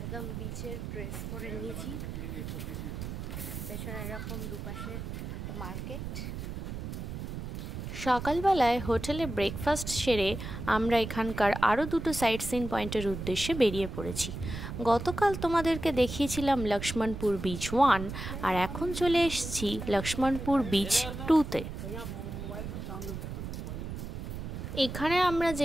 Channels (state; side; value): noise; right; rumble, 7 dB below the sound